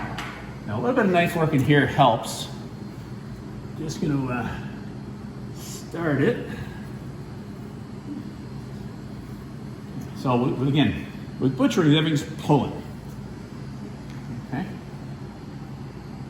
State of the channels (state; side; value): identical; both; correlation 1.00